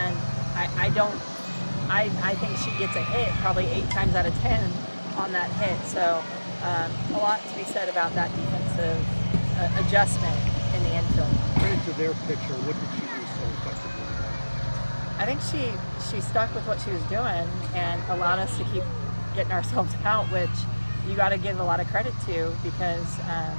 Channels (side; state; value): both; inverted; correlation -1.00